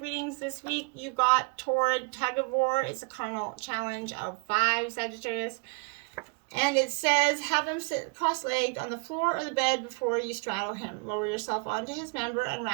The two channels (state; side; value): quieter; left; 35.8 dB